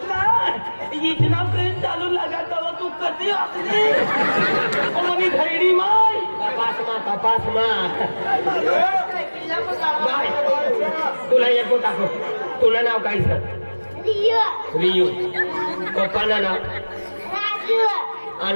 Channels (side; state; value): both; inverted; correlation -1.00